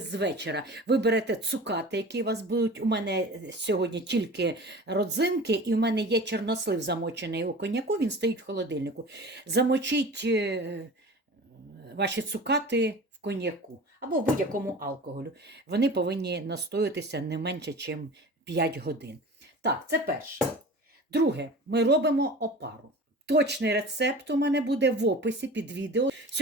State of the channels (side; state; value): both; normal; correlation 0.38